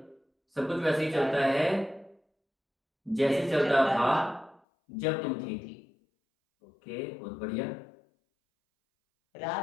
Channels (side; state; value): right; drops out; at 4.6 s